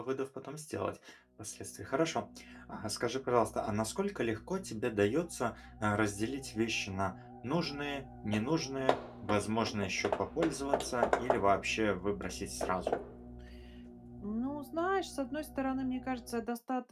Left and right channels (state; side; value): identical; both; correlation 1.00